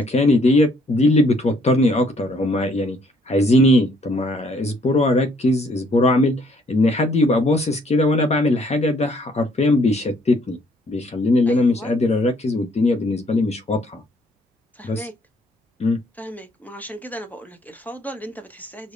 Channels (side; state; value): both; normal; correlation 0.65